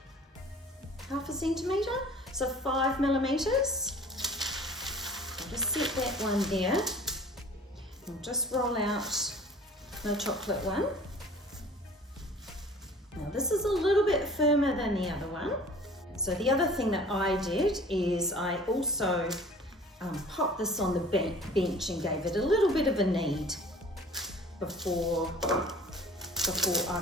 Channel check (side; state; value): both; normal; correlation 0.47